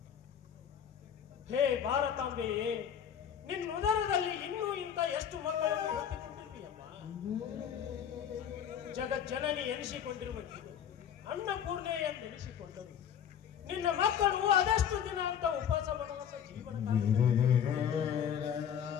ಹೇ ಭಾರತಾಂಬೆಯೇ, ನಿನ್ನ ಉದರದಲ್ಲಿ ಇನ್ನೂ ಇಂಥ ಎಷ್ಟು ಮಕ್ಕಳನ್ನು ಹೊತ್ತಿಕೊಂಡಿರ್ತೀಯಮ್ಮ. ಜಗಜ್ಜನನಿ ಎನಿಸಿಕೊಂಡಿರುವುದು ಅನ್ನಪೂರ್ಣೆ ಎಂದೆನಿಸಿಕೊಂಡರು. ನಿನ್ನ ಮಕ್ಕಳು ಅದಷ್ಟು ದಿನ ಅಂತ ಉಪವಾಸ ವನವಾಸ ಜೀವನ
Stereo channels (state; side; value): quieter; right; 8.7 dB